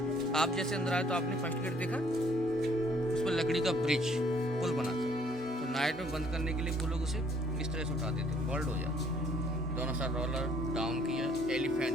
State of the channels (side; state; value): both; normal; correlation 0.62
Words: आप जैसे अंदर आए तो आपने फर्स्ट गेट देखा, उस पर लकड़ी का ब्रिज पुल बना था। तो नाइट में बंद करने के लिए वो लोग उसे इस तरह से उठाते थे, बोल्ड हो जाता। दोनों साइड रोलर डाउन किया, एलिफेंट